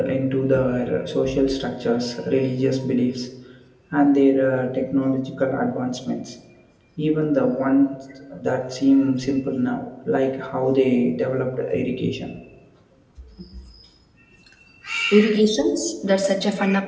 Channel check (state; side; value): identical; both; correlation 1.00